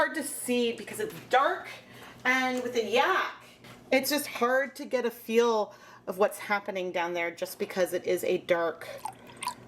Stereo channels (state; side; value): identical; both; correlation 1.00